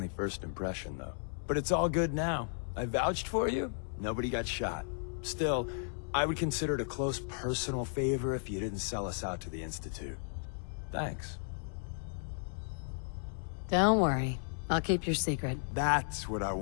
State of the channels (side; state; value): right; silent; 55 dB below the other